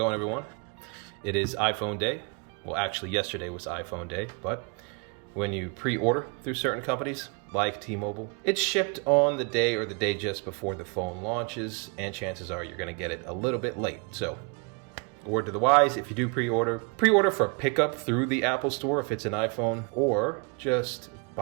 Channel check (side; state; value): left; quieter; 34.2 dB